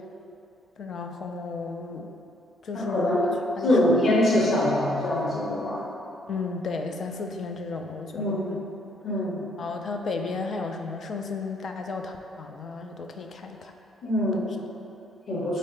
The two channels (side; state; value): both; normal; correlation 0.66